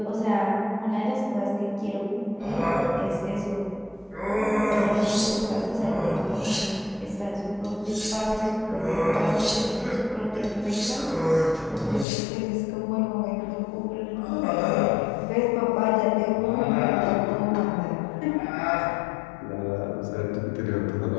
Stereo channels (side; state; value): right; drops out; at 12.1 s